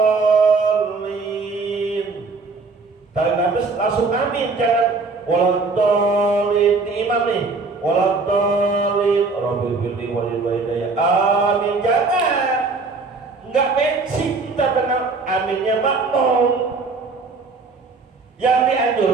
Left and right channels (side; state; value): left; quieter; 4.0 dB